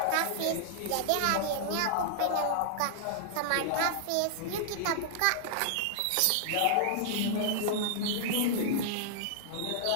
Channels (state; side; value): different; both; correlation -0.01